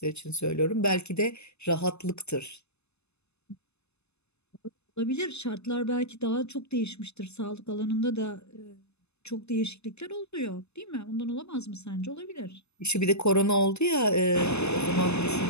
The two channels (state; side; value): late; right; 0.80 ms